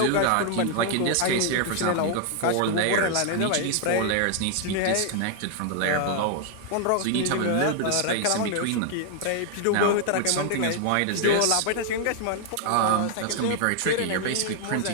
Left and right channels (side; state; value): both; different; correlation 0.00